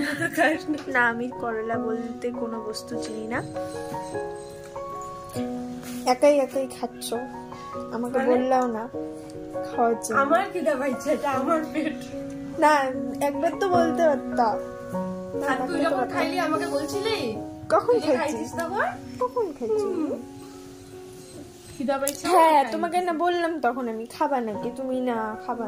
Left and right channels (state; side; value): identical; both; correlation 1.00